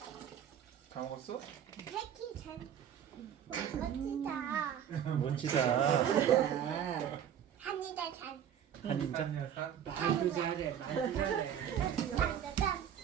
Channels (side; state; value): left; quieter; 9.4 dB